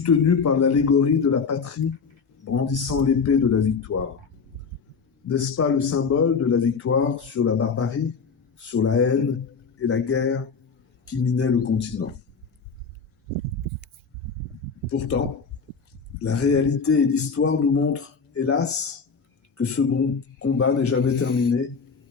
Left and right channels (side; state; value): right; quieter; 5.3 dB